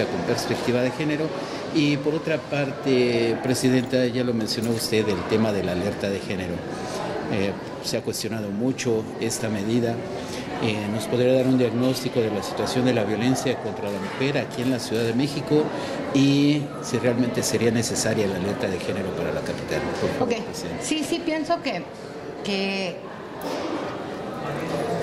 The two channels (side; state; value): both; identical; correlation 1.00